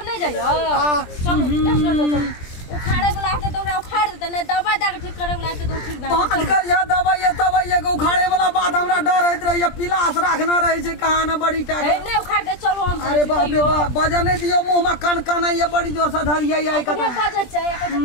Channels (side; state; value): right; late; 20 ms